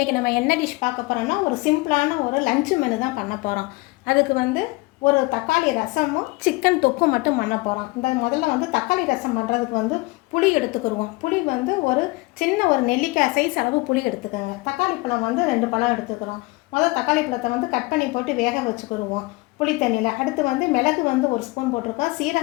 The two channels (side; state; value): right; quieter; 23.9 dB